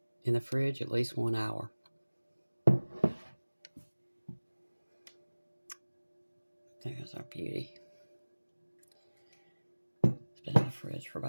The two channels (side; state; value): both; inverted; correlation -1.00